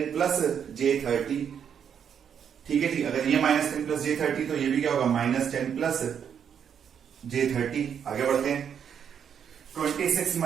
प्लस J30, ठीक है जी। अगर ये माइनस 10 प्लस J30 तो ये भी क्या होगा, माइनस 10 प्लस J30। आगे बढ़ते हैं, 26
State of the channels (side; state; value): left; quieter; 8.0 dB